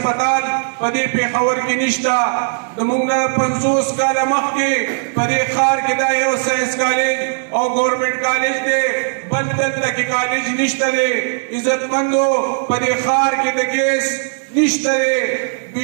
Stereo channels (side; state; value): left; silent; digital silence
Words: په دې پېښور کې نشته. زموږ نه 50 کاله مخکې په دې ښار کې دا یو ساینس کالج او ګورنمنټ کالج دی، بل دلته کې کالج نشته دی. عزتمندو په دې ښار کې د ګیس نشته دی،